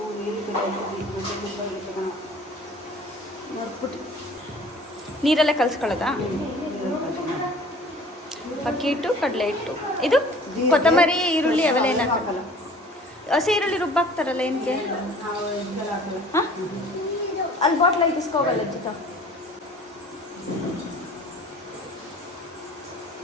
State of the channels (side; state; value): both; normal; correlation 0.48